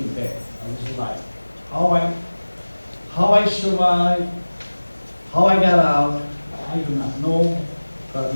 back, I was alive. How I survived, how I got out, I do not know, but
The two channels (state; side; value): inverted; both; correlation -1.00